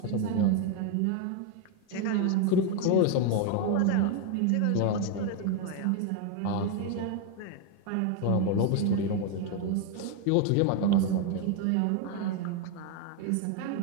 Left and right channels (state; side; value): different; both; correlation 0.01